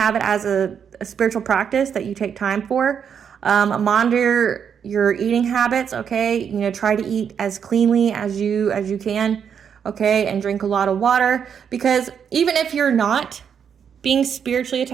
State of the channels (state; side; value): quieter; left; 7.6 dB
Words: it as a spiritual practice that you take time for. Monitor your eating habits, okay? Try to eat as cleanly as you can, okay? And drink a lot of water, because even if you're not being spiritually